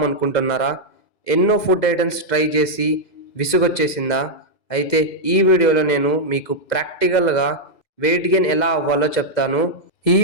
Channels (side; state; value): right; late; 2.0 ms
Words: ఎన్నో ఫుడ్ ఐటమ్స్ ట్రై చేసి విసుగొచ్చేసిందా? అయితే ఈ వీడియోలో నేను మీకు ప్రాక్టికల్‌గా వెయిట్ గెయిన్ ఎలా అవ్వాలో చెప్తాను. ఈ